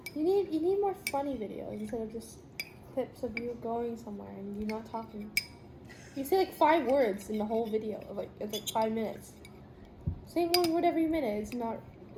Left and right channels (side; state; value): both; identical; correlation 1.00